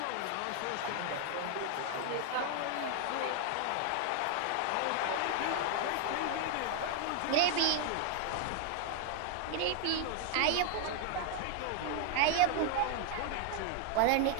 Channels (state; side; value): different; both; correlation 0.00